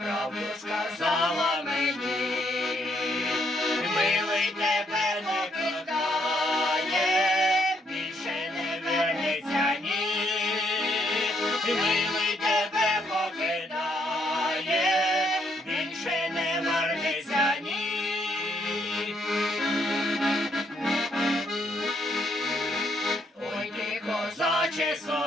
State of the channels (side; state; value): both; normal; correlation 0.72